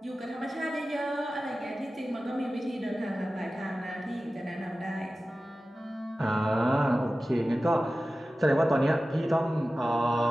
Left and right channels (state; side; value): normal; both; correlation 0.95